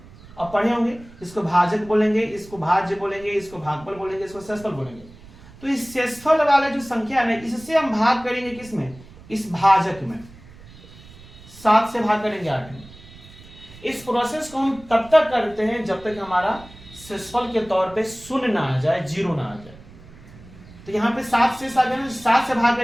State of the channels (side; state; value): right; noise; rumble, 21 dB below the sound